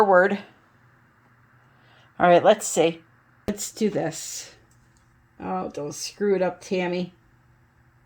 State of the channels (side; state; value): both; identical; correlation 1.00